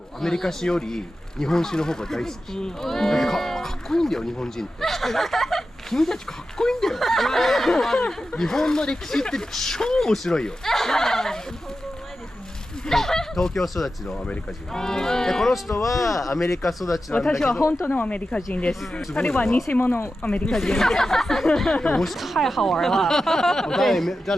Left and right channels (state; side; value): normal; both; correlation 0.92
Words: アメリカ史より日本史の方が大好き。かっこいいんだよ日本人って。君たちかっこいいんだよ。日本の歴史って超面白いよ。東京育ちのアメリカ人。でこの人はアメリカ育ちなんだけど。私は本当のアメリカ人です。彼は偽物アメリカ人。太好玩了。在